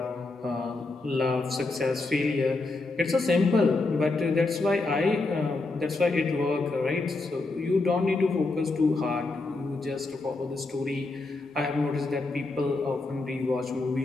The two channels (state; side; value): quieter; right; 3.3 dB